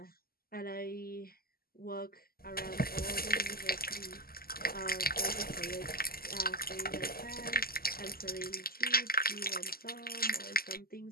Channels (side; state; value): right; late; 0.43 ms